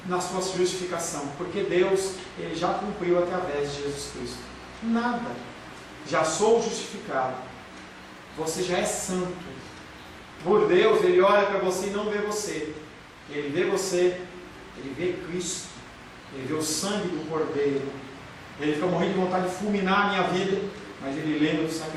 na sua justificação, porque Deus, Ele já cumpriu através de Jesus Cristo. Nada. Já sou justificado. Você já é santo. Por Deus, Ele olha para você e não vê você. Ele vê você, Ele vê Cristo, Ele vê o sangue do Cordeiro. Ele fica morrendo de vontade de fulminar a minha vida, mas Ele lembra do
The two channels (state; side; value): identical; both; correlation 1.00